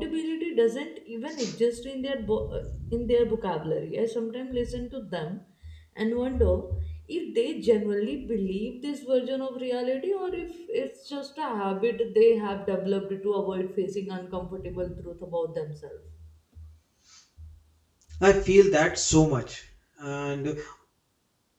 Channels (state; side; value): identical; both; correlation 1.00